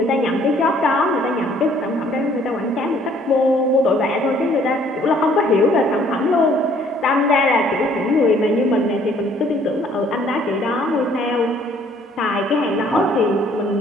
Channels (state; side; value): normal; both; correlation 0.60